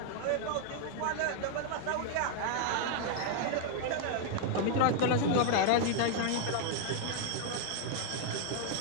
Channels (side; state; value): both; different; correlation 0.00